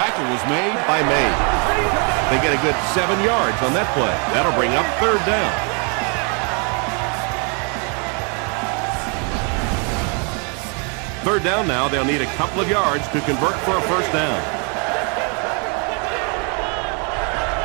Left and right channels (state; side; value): quieter; left; 36.6 dB